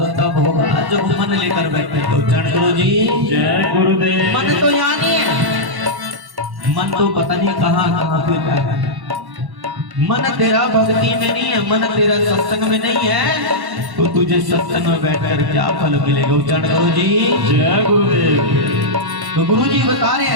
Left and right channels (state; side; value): late; left; 1.1 ms